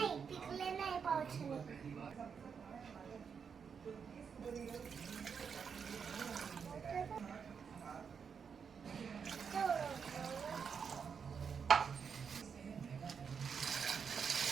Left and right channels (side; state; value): left; quieter; 6.5 dB